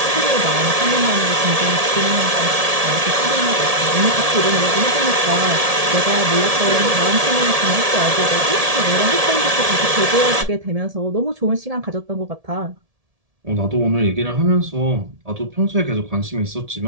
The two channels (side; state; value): left; late; 1.7 ms